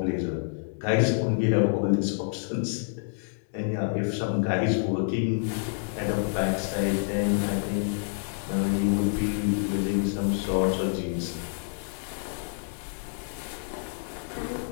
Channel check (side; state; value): right; silent; digital silence